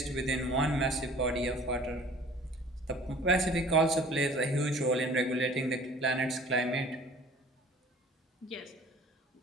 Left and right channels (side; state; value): both; normal; correlation 0.49